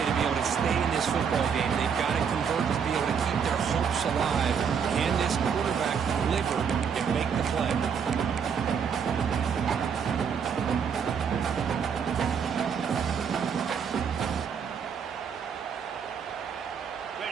to be able to stay in this football game. They've got to convert to be able to keep their hopes alive. Can this quarterback deliver and make the play?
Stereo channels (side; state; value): left; quieter; 6.9 dB